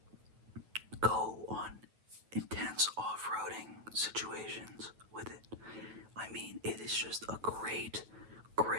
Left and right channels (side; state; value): left; late; 9.2 ms